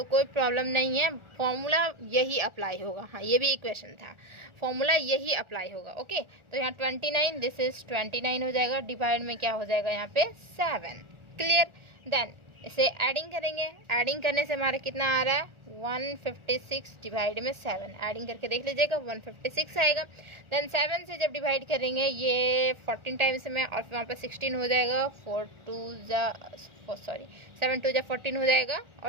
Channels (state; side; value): late; left; 1.4 ms